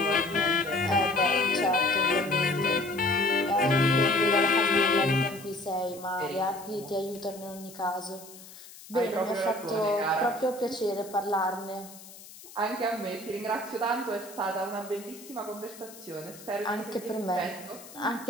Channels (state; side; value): noise; left; hiss, 18 dB below the sound